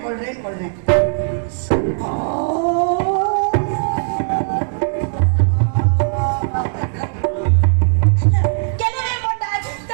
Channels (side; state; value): left; silent; digital silence